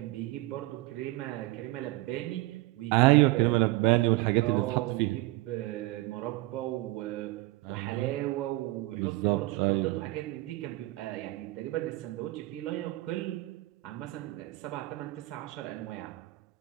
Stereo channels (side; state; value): left; quieter; 19.7 dB